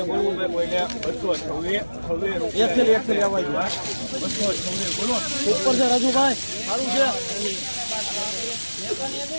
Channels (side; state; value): both; inverted; correlation -1.00